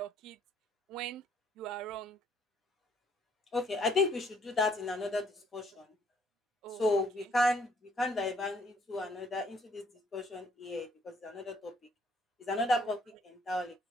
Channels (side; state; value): both; normal; correlation 0.65